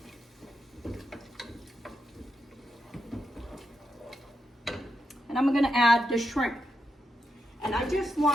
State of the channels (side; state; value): both; normal; correlation 0.85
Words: And I'm gonna add the shrimp. And I just